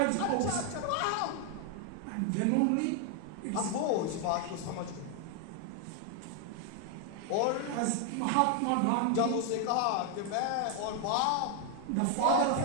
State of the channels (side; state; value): both; different; correlation 0.00